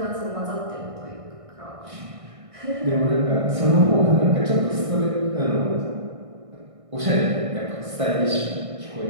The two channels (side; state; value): left; late; 1.6 ms